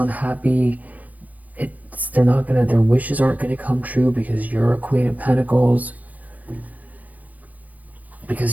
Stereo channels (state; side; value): late; left; 0.078 ms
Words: Their wishes aren't gonna come true because you're a Queen of Pentacles,